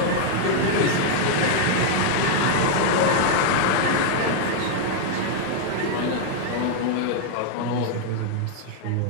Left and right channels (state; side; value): different; both; correlation -0.01